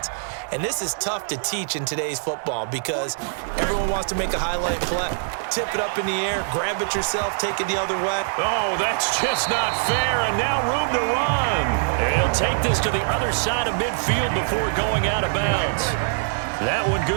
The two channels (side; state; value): left; silent; 63 dB below the other